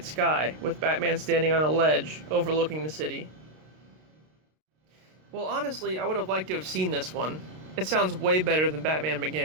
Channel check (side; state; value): left; late; 32 ms